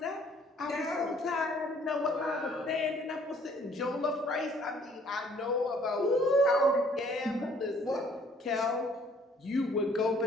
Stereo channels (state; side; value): normal; both; correlation 0.60